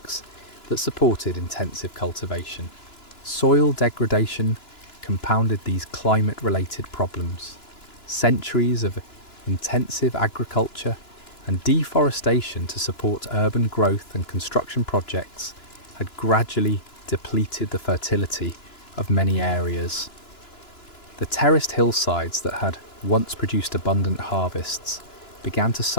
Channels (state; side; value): late; right; 2.9 ms